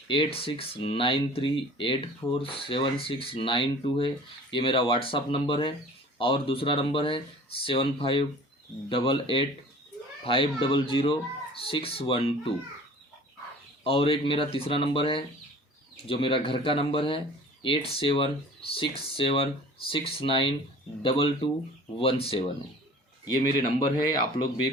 8693847692 है। ये मेरा व्हाट्सअप नंबर है। और दूसरा नंबर है 7588500612। और एक मेरा तीसरा नंबर है जो मेरा घर का नंबर है 8767692217। ये मेरे नंबर है। आप लोग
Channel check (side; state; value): both; normal; correlation 0.45